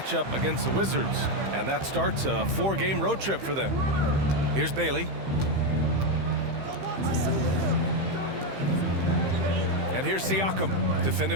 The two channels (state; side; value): late; left; 15 ms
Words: up against the Wizards. And that starts a 4-game road trip for them. Here's Bailey. And here's Siakam,